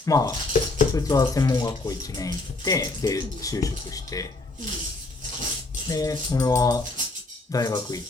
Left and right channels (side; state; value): right; quieter; 3.1 dB